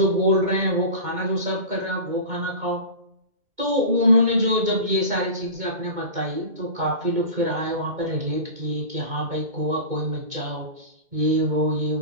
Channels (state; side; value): late; left; 2.2 ms